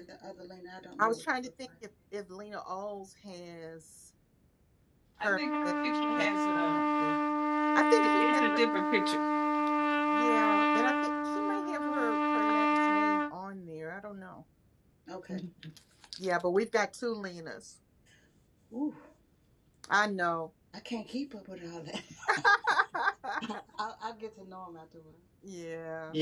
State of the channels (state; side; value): identical; both; correlation 1.00